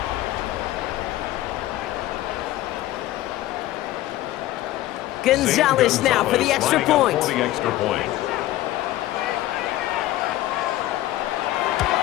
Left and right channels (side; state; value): right; quieter; 15.3 dB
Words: Gonzalez now for the extra point.